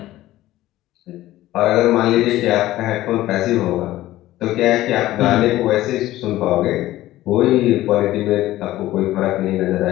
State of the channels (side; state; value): right; quieter; 15.5 dB